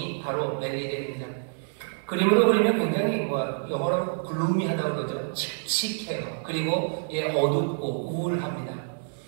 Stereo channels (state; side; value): silent; left; digital silence